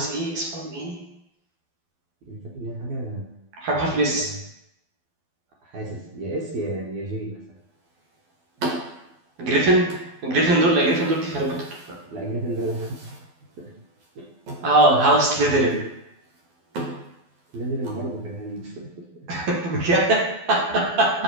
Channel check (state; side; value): late; left; 12 ms